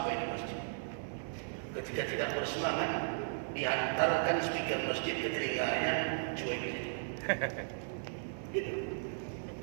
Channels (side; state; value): left; silent; 54 dB below the other